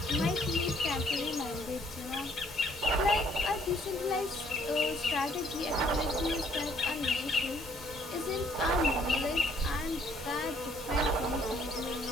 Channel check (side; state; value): both; normal; correlation 0.63